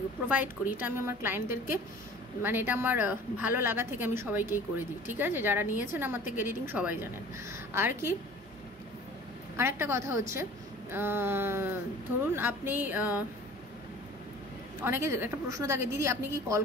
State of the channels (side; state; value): both; normal; correlation 0.44